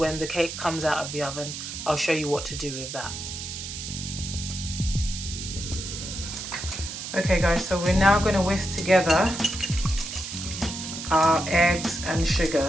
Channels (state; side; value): noise; right; hiss, 8 dB below the sound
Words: the cake comes out of the oven. I'll show you what to do with that. Okay guys, so we're now going to whisk together our eggs and